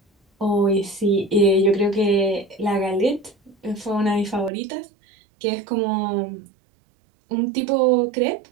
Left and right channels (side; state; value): left; drops out; at 4.5 s